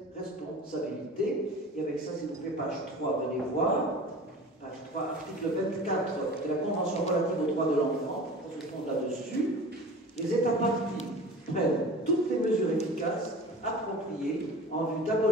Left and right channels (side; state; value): both; normal; correlation 0.38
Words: responsabilité. Et avec ça, s'il vous plaît, page 3, venez voir. Page 3, article 24 de la Convention relative aux droits de l'enfant, on se fonde là-dessus. Les États partis prennent toutes les mesures efficaces appropriées en vue